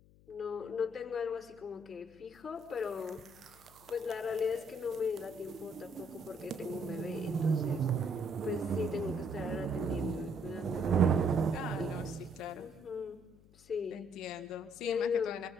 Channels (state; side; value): noise; left; hum, 25 dB below the sound